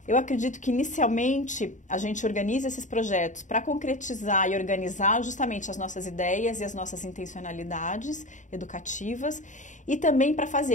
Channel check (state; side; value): late; right; 0.36 ms